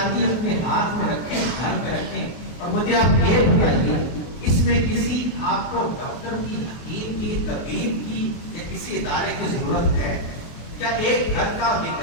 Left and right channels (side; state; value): right; late; 24 ms